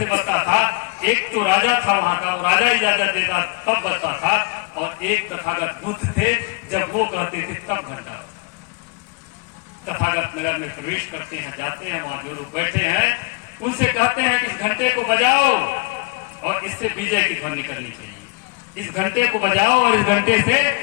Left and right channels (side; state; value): right; quieter; 29.0 dB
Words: बजता था। एक तो राजा था वहां का, वो राजा इजाजत देता तब बजता था, और एक तथागत बुद्ध थे, जब वो कहते थे तब घंटा। तथागत नगर में प्रवेश करते हैं, जाते हैं, वहां जो लोग बैठे हैं उनसे कहते हैं कि इस घंटे को बजाओ और इससे विजय की ध्वनि निकलनी चाहिए। इस घंटे को बजाओ और इस घंटे से